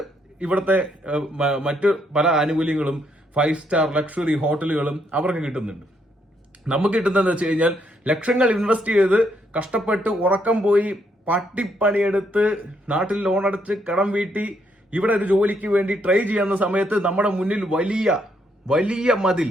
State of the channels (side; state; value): both; normal; correlation 0.74